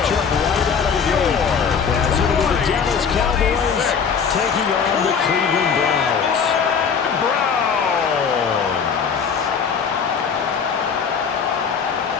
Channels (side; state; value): right; quieter; 6.4 dB